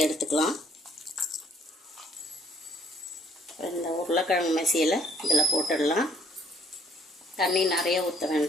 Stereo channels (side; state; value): both; normal; correlation 0.62